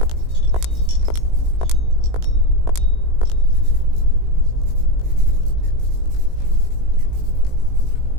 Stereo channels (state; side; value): late; left; 18 ms